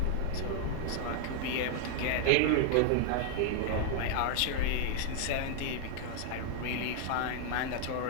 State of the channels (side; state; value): both; different; correlation 0.00